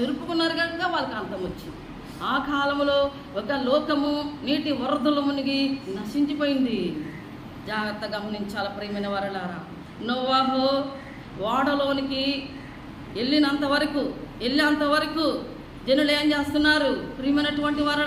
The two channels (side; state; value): both; identical; correlation 1.00